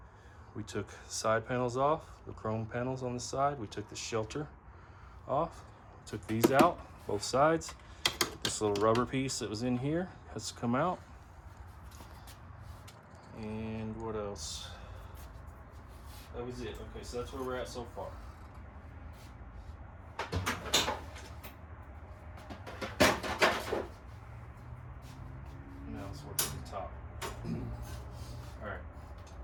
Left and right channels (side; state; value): both; identical; correlation 1.00